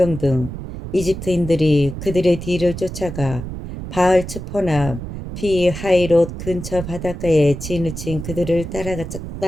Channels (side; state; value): right; noise; rumble, 8 dB below the sound